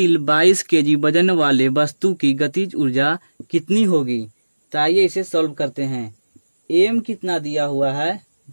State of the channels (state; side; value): inverted; both; correlation -1.00